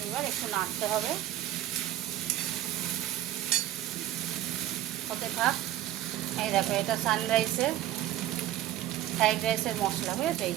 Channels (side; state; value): left; quieter; 13.3 dB